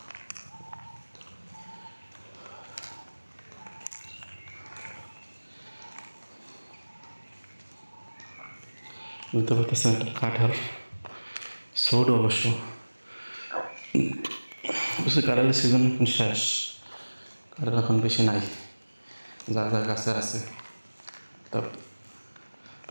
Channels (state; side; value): inverted; both; correlation -1.00